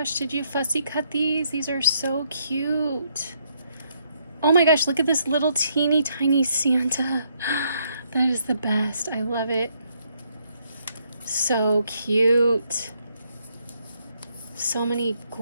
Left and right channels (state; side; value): inverted; both; correlation -0.73